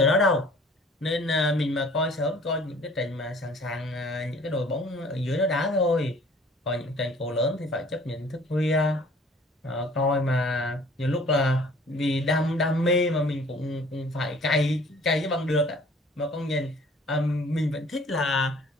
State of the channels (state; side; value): normal; both; correlation 0.52